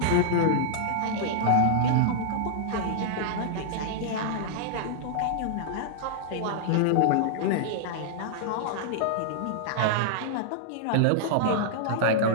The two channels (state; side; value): different; both; correlation -0.01